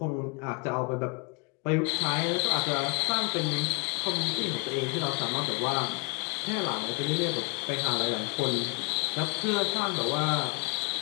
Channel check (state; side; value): quieter; right; 33.5 dB